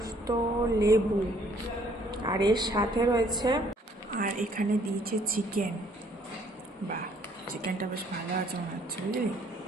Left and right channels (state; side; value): normal; both; correlation 0.62